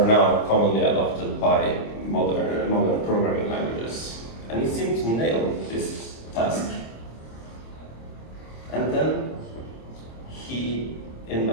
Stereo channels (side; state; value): right; late; 26 ms